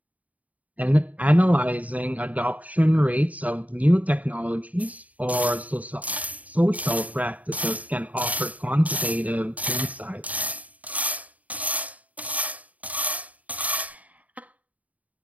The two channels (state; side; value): late; left; 0.071 ms